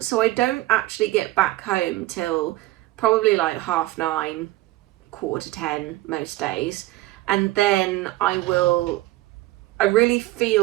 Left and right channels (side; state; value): left; quieter; 17.8 dB